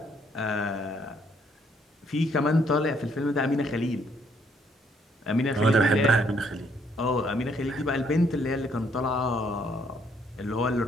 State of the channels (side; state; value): both; normal; correlation 0.68